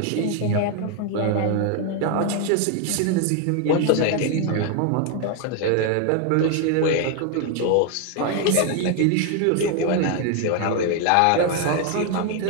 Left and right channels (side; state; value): both; different; correlation 0.01